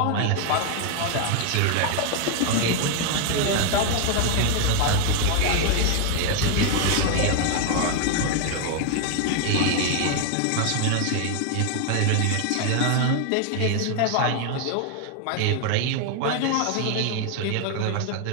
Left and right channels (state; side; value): different; both; correlation 0.00